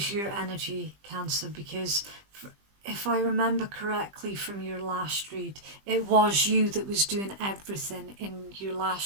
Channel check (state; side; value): late; left; 20 ms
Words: your energy, Cancer, because if I remember correctly from your last read, it was you that was doing everything in your